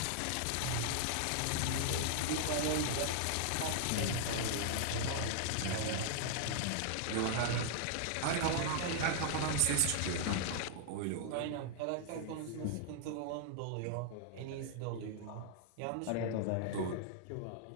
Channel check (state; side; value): different; both; correlation -0.01